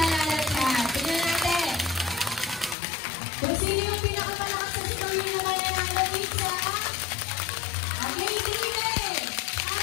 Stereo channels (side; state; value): right; drops out; at 2.8 s